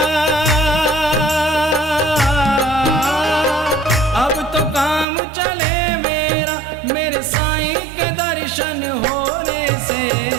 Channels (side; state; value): left; drops out; at 5.1 s